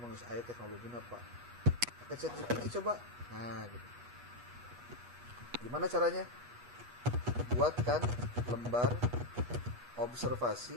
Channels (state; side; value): late; left; 8.3 ms